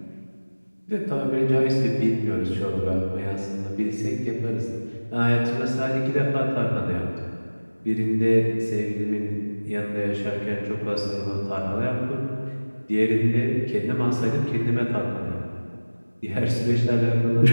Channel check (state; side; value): inverted; both; correlation -1.00